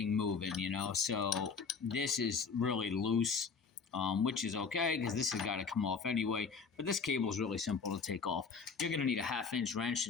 moving, you know. So this is really loose, which is okay because this has got to come off anyway. But this cable is really simple to take off. You're going to need a 1/2-inch wrench to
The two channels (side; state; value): right; quieter; 5.5 dB